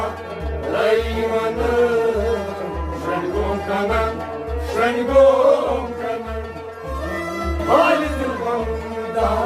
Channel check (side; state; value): both; identical; correlation 1.00